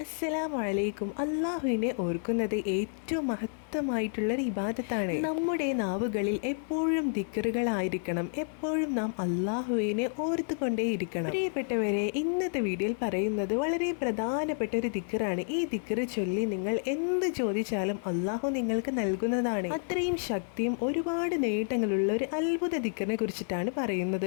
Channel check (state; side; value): silent; right; 58 dB below the other